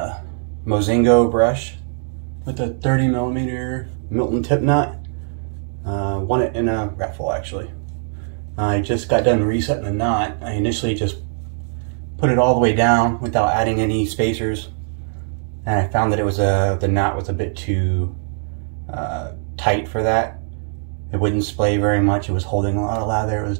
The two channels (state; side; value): silent; left; digital silence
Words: Mozingo brush with a 30mm Milton tip knot. Won it in a raffle actually. I just got done resetting the knot. I initially just put it all the way down without adding any spacers, and I found that it was the knot was a bit too tight for that. It wouldn't splay very much. It was holding a lot of lather. It was